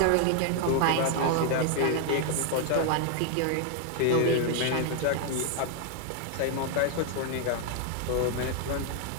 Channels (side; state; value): both; different; correlation 0.01